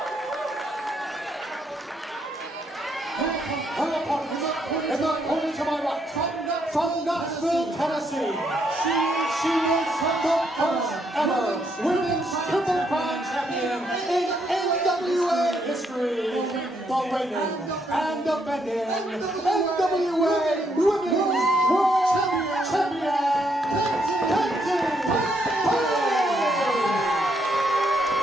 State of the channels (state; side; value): normal; both; correlation 0.75